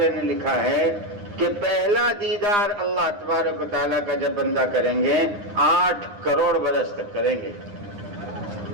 نے لکھا ہے کہ پہلا دیدار اللہ تبارک و تعالیٰ کا جب بندہ کریں گے 8 کروڑ برس تک کریں گے.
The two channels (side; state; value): left; late; 9.8 ms